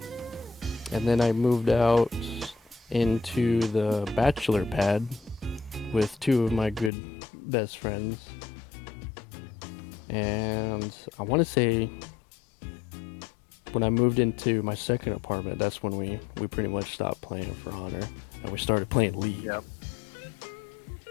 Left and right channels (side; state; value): right; drops out; at 6.9 s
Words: And then I moved out into the bachelor pad with two of my good best friends. And I want to say when I moved into my second apartment, that's when we pretty much stopped playing For Honor and we started playing League. Yep.